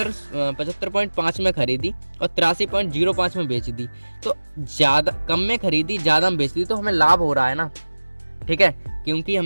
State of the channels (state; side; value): inverted; both; correlation -1.00